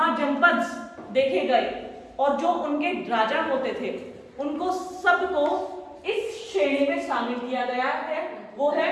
देखे गए, और जो उनके राजा होते थे उनको सबको इस श्रेणी में शामिल किया गया है, वो है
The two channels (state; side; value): identical; both; correlation 1.00